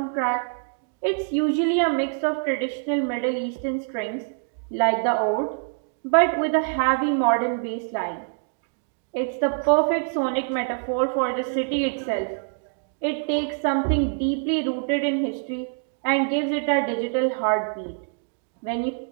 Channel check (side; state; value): left; silent; digital silence